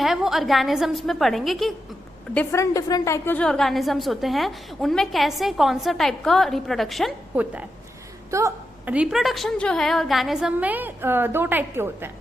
वो ऑर्गेनिजम्स में पढ़ेंगे कि डिफरेंट टाइप के जो ऑर्गेनिजम्स होते हैं उनमें कैसे कौन सा टाइप का रिप्रोडक्शन होता है। तो रिप्रोडक्शन जो है ऑर्गेनिज्म में दो टाइप के होते हैं,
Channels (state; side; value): normal; both; correlation 0.87